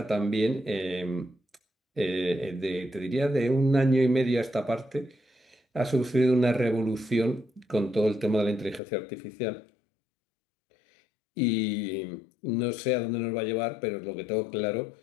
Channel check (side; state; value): right; drops out; at 8.8 s